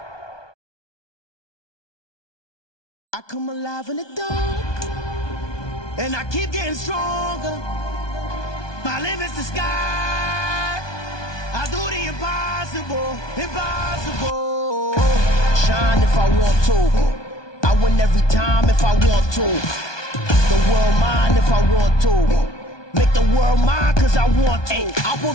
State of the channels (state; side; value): late; right; 1.2 ms